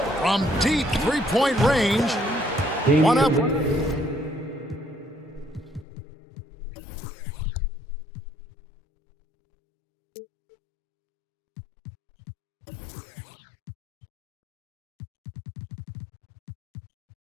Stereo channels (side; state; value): right; drops out; at 5.9 s